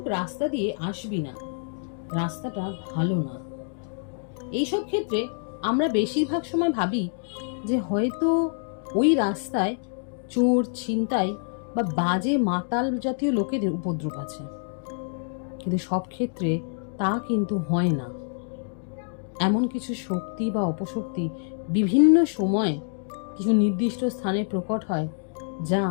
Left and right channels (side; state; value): right; silent; 61 dB below the other